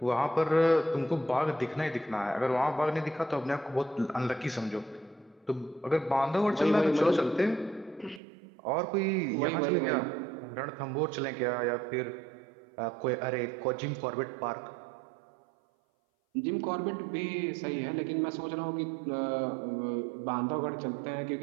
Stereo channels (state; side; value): drops out; left; at 8.2 s